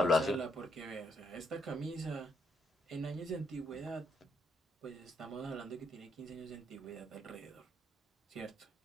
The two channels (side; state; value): both; normal; correlation 0.75